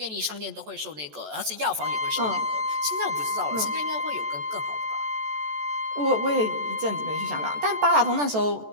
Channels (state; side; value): late; left; 14 ms